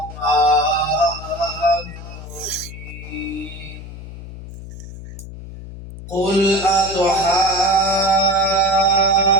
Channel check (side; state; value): left; noise; hum, 13 dB below the sound